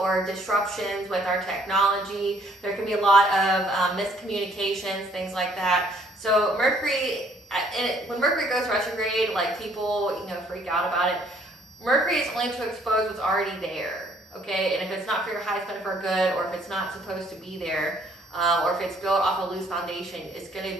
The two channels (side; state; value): both; normal; correlation 0.63